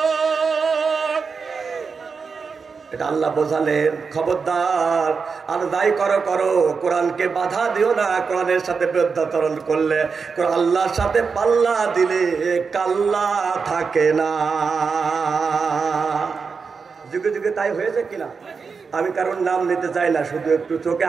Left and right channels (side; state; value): left; quieter; 5.2 dB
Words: এটা আল্লাহ বোঝালেন খবরদার আর যাই করো করো কোরআনকে বাধা দিও না। কোরআনের সাথে বিরুদ্ধাচরণ করলে আল্লাহর সাথে পাল্লা দিলে কাল্লা থাকে না। যুগে যুগে তাই হয়েছে কিনা? আমি কারণ নাম নিতে চাই না, শুধু একটু চোখে